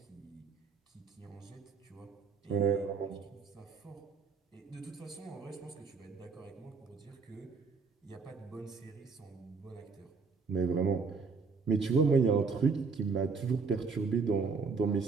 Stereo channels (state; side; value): quieter; left; 4.9 dB